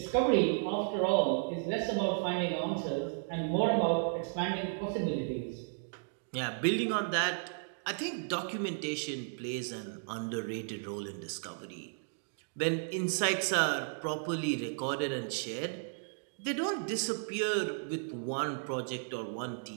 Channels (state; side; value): silent; left; digital silence